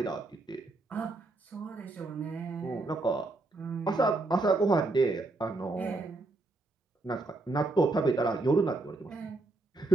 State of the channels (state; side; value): quieter; left; 3.1 dB